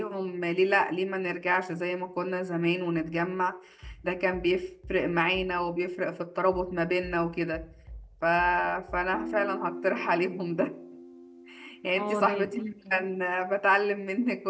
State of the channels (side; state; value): both; identical; correlation 1.00